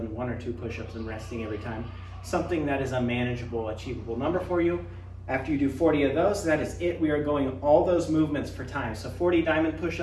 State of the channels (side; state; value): both; identical; correlation 1.00